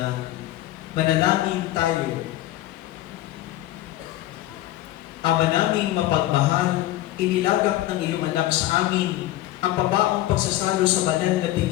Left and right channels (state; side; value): quieter; right; 15.2 dB